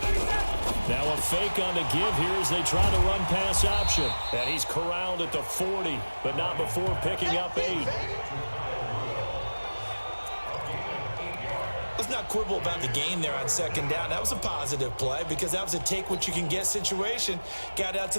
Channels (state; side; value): inverted; both; correlation -1.00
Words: Now a fake on the give here as they try to run pass option. And he's corralled at the 40, but not before picking up 8. Let's not quibble about the gain there on second down. That was a positive play because that was a take-what-you-can-get situation. Got out to